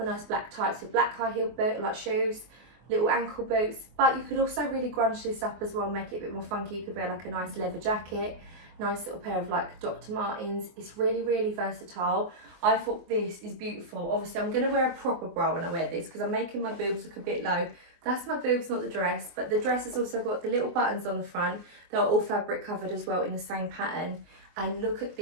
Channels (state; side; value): late; left; 24 ms